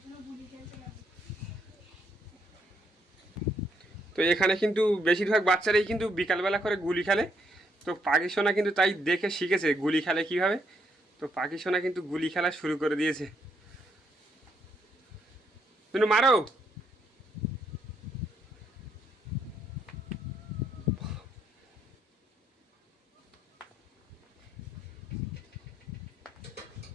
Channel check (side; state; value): both; normal; correlation 0.74